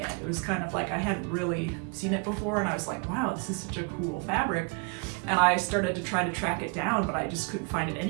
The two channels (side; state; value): left; quieter; 32.7 dB